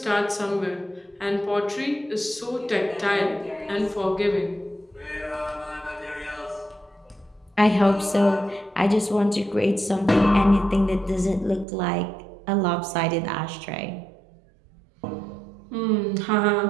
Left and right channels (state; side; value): drops out; left; at 11.7 s